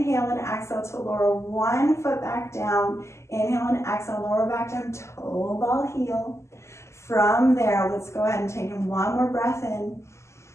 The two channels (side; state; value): right; late; 0.13 ms